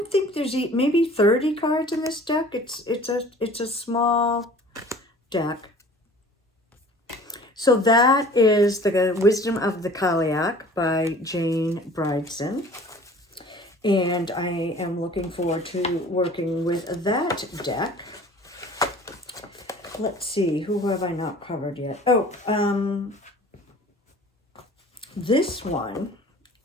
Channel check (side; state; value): both; normal; correlation 0.47